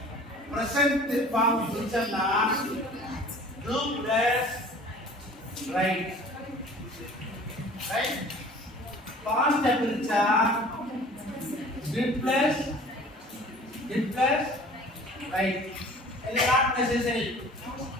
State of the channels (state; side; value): normal; both; correlation 0.46